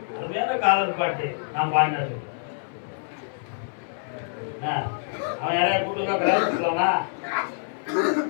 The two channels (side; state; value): right; silent; 58 dB below the other